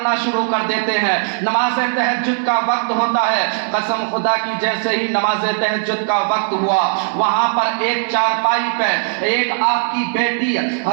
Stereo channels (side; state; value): left; silent; digital silence